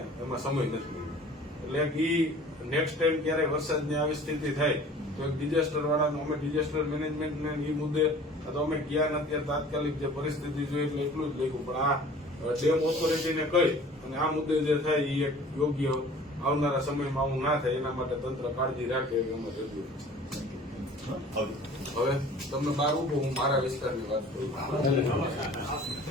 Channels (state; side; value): normal; both; correlation 0.47